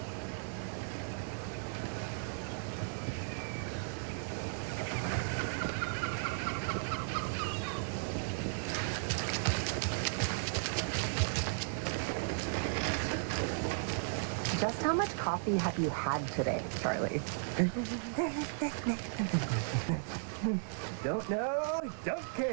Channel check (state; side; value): silent; left; 54 dB below the other